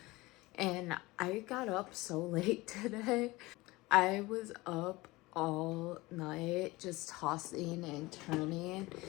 And I got up so late today. I was up all night just tossing and turning.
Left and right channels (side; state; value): right; quieter; 21.0 dB